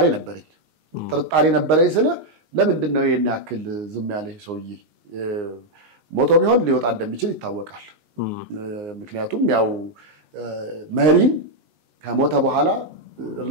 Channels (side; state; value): left; late; 19 ms